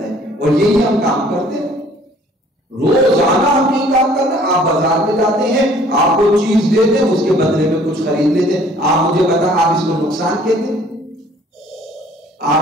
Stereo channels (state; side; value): normal; both; correlation 0.56